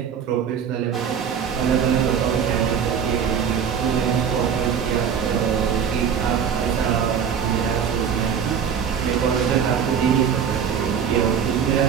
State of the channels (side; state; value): left; quieter; 7.5 dB